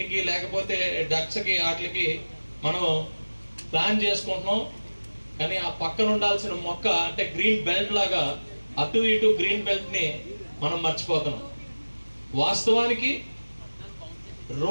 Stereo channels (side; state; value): both; inverted; correlation -1.00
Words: లేకపోతే డక్స్కి, వాటికి మనం ప్లాన్ చేసుకుంటున్నాం. కానీ ఆ పక్కన ఉండాల్సిన మొక్క అంటే గ్రీన్ బెల్ట్ లాగా అటు ఇటు గ్రీన్ బెల్ట్ని మనం మర్చిపోతున్నాం. వాస్తవానికి